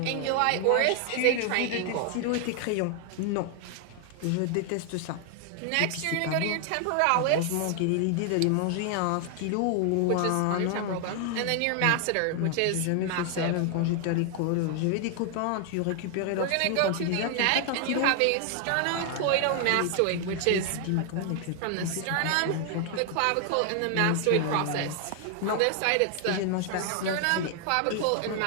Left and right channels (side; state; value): both; different; correlation 0.00